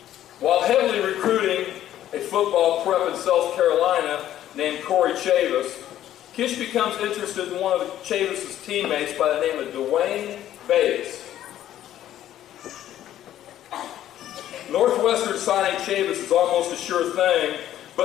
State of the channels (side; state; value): right; quieter; 12.2 dB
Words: While heavily recruiting a football prep in South Carolina named Corey Chavis, Kish becomes interested in one of Chavis' teammates by the name of Dwayne Bates. Northwestern signing Chavis is almost a sure thing,